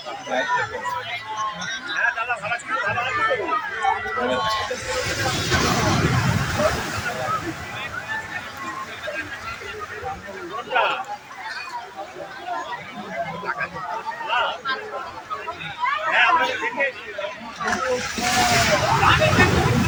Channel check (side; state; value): both; identical; correlation 1.00